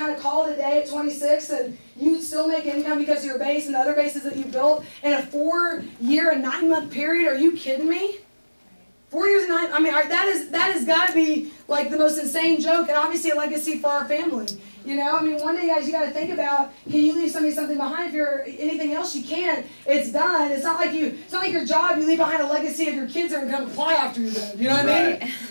of call it a day at 26 and you'd still make income because of your base and the other bases that you built in a 4-year and 9-month period. Are you kidding me? 4 years and 9, that has got to be like the most insane joke, and obviously a legacy for our family. One day, guys, you got to think about, can you leave something behind? If you're anything else you can, it's done. It's not like your job, you leave behind a legacy of your kids are going to come fly after you then. You know what I mean?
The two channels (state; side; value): inverted; both; correlation -1.00